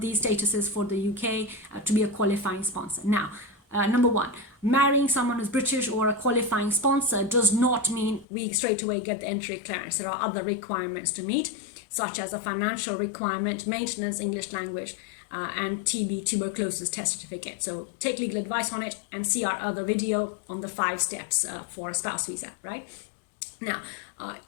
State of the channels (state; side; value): drops out; right; at 8.2 s